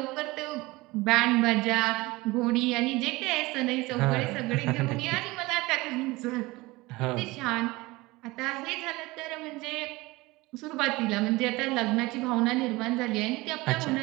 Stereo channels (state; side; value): quieter; left; 21.5 dB